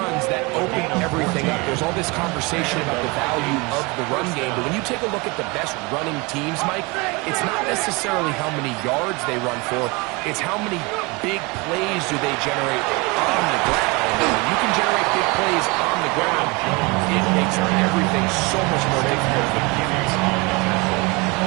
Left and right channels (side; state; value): left; quieter; 25.9 dB